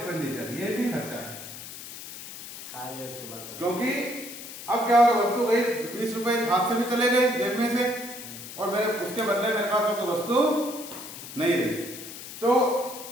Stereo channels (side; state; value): left; noise; hiss, 12 dB below the sound